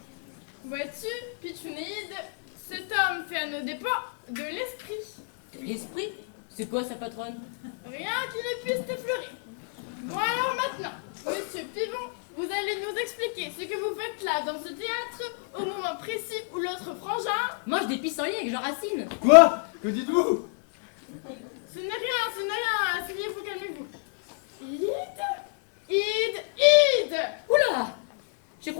Vois-tu, Pitchounéide, cet homme fait à nos dépens de l'esprit. De l'esprit? C'est quoi ça, patronne? Rien qui ne puisse t'effleurer. Bon alors maintenant, monsieur Pivon, vous allez nous expliquer ce que vous faites là dans ce théâtre au moment précis où l'autre frangin mange des pissenlits avec Jean Racine. Quoi? Que dites-vous? Ce n'est rien, asseyez-vous, calmez-vous. Ide! Oula! Je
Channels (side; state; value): right; silent; 59 dB below the other